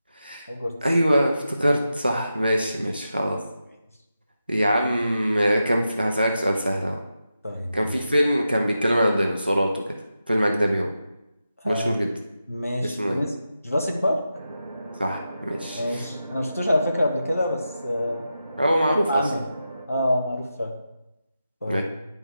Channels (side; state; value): both; inverted; correlation -0.89